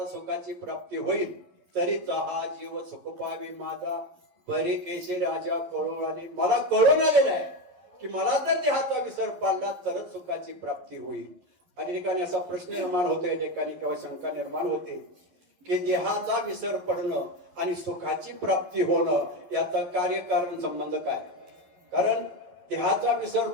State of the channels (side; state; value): left; late; 11 ms